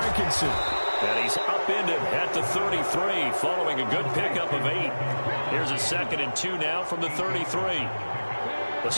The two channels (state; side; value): inverted; both; correlation -1.00